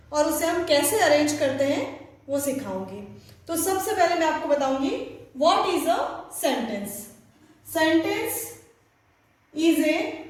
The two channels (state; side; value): identical; both; correlation 1.00